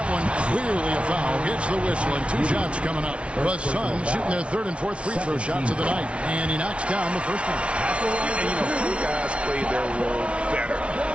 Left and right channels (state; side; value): late; left; 0.060 ms